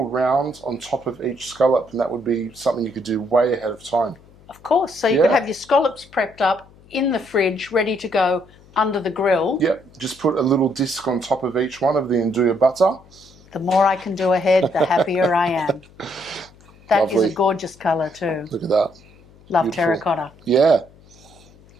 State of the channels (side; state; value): left; noise; hum, 26 dB below the sound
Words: round on top of each scallop, and that would be something you could do way ahead of time. Of course. So you could have your scallops prepped up in the fridge, ready to go under the grill. Yep, just put a little disc on top of each one of the Nduja butter. The more I can do ahead, the happier I am. That Lovely. is a gorgeous colour too. Look at that. Love Beautiful. Terracotta. Yeah.